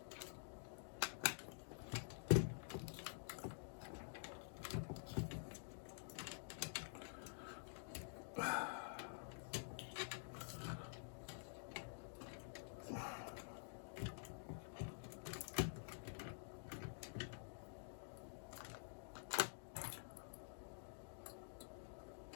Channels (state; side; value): silent; right; digital silence